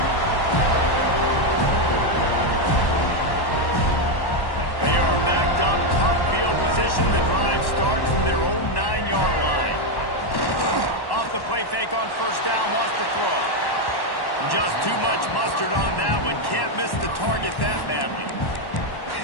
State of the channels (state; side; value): late; right; 1.1 ms